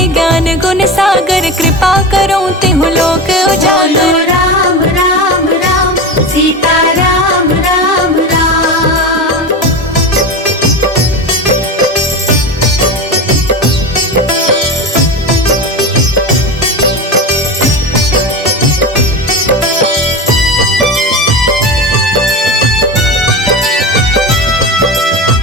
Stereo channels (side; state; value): both; normal; correlation 0.24